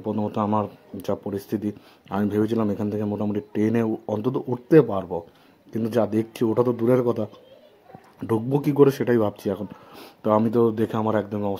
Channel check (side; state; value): both; identical; correlation 1.00